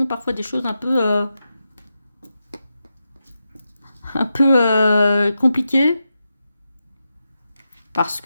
parfois des choses un peu compliquées, parce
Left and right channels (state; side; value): inverted; both; correlation -0.88